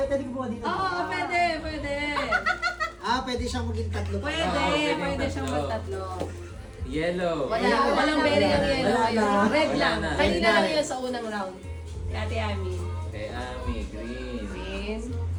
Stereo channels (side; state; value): both; identical; correlation 1.00